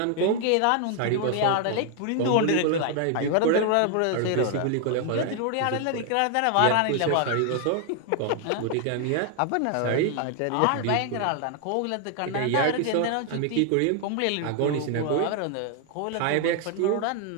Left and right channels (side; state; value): both; different; correlation 0.00